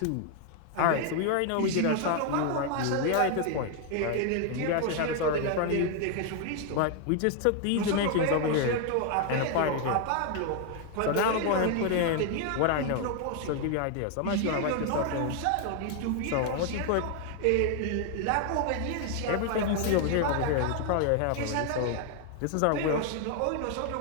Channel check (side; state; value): both; different; correlation 0.00